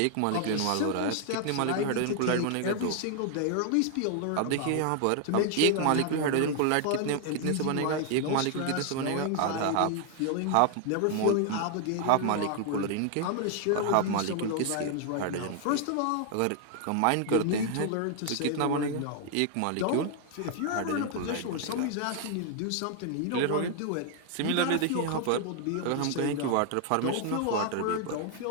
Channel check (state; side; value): different; both; correlation 0.00